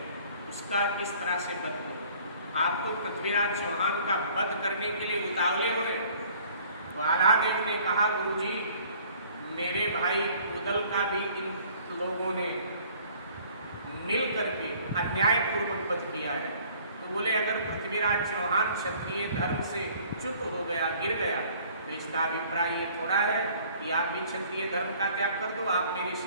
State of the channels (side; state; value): both; inverted; correlation -0.55